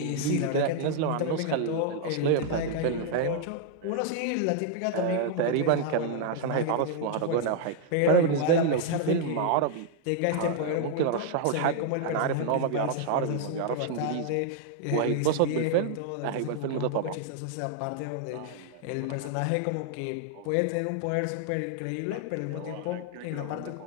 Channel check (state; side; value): different; both; correlation 0.00